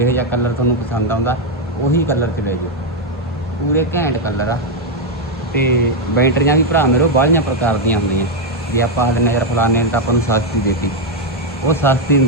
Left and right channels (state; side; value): normal; both; correlation 0.02